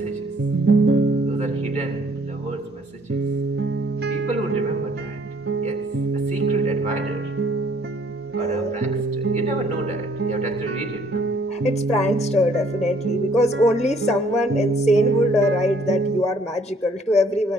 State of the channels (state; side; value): normal; both; correlation 0.62